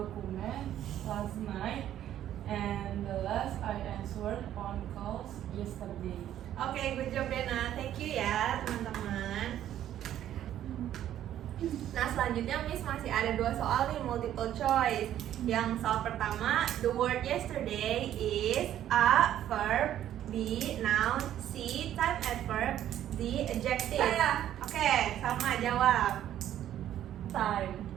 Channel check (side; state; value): left; quieter; 11.6 dB